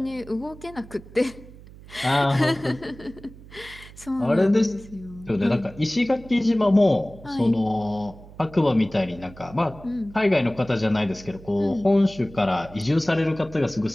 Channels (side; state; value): right; noise; hum, 19 dB below the sound